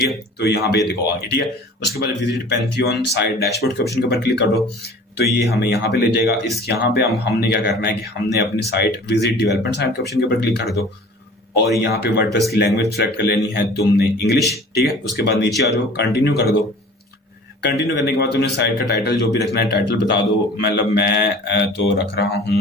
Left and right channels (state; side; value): normal; both; correlation 0.45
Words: है, तो यहाँ पे देखो आगे। ठीक है, उसके बाद विजिट पैंथियन साइट डैशबोर्ड के ऑप्शन के ऊपर क्लिक कर दो तो ये हमें यहाँ पे ले जाएगा। यहाँ पे हमने क्या करना है कि हमने अपनी साइट विजिट डेवलपमेंट साइट के ऑप्शन के ऊपर क्लिक कर दो और यहाँ पे वर्डप्रेस की लैंग्वेज सेलेक्ट कर लेनी है तुमने इंग्लिश। ठीक है, उसके बाद नीचे आ जाओ, कंटिन्यू कर दो। कंटिन्यू करने के बाद तुमने साइट का टाइटल जो भी रखना है टाइटल बता दो। मतलब मैं तो रख रहा